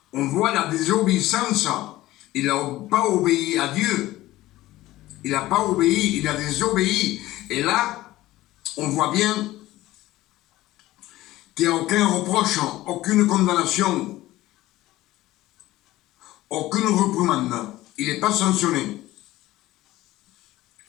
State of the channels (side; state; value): right; quieter; 16.6 dB